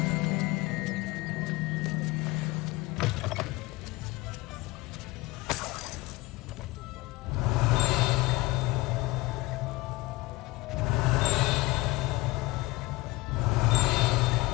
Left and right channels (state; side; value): quieter; right; 21.4 dB